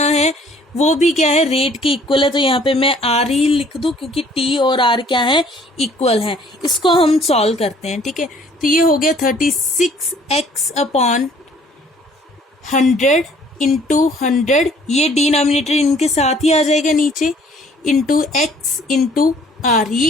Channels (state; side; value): normal; both; correlation 0.58